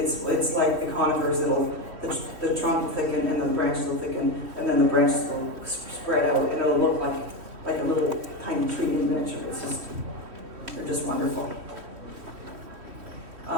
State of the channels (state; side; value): late; left; 3.1 ms